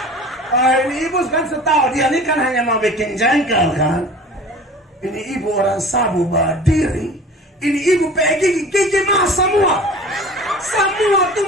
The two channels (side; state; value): both; normal; correlation 0.42